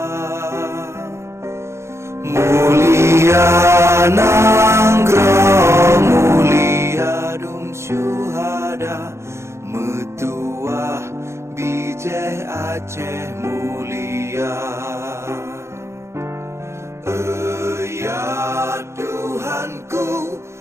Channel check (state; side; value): late; left; 0.13 ms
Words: Mulia nanggroh mulia dum syuhada, metuah bijih Aceh mulia. Ya Tuhanku,